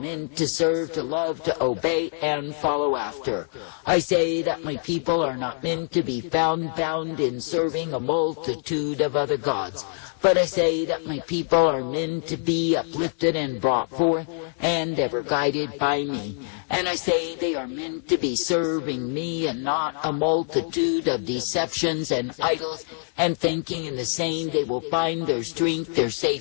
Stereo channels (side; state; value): right; silent; 61 dB below the other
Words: to serve, to love, to obey, and follow after. I say that my people are not meant to be found bound in serving a multitude of other gods. But I say that my people are meant to be uplifted and brought forth, and ever guided by me. And I say they are meant to be serving me and not a multitude of deceptions and idols, and thinking in the same they will find their strength, their